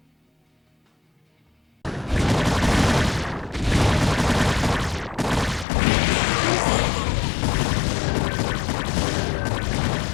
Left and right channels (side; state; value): right; drops out; at 5.7 s